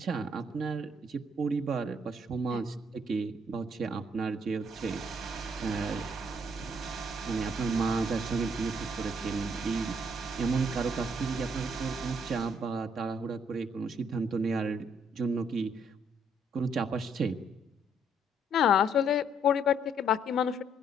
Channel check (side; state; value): both; normal; correlation 0.68